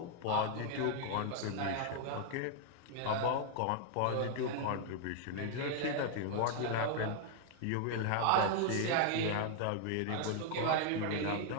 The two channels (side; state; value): both; different; correlation 0.00